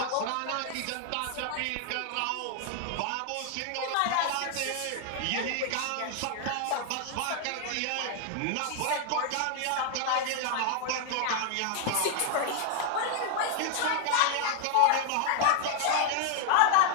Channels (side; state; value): both; different; correlation 0.00